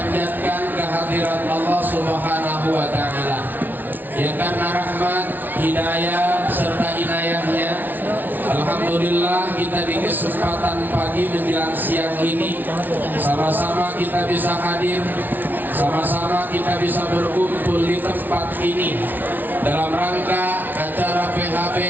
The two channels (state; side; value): late; left; 0.086 ms